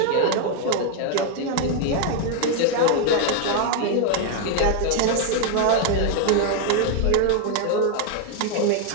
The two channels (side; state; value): both; different; correlation 0.01